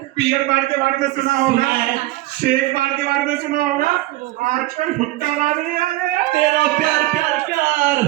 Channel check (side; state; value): left; quieter; 17.7 dB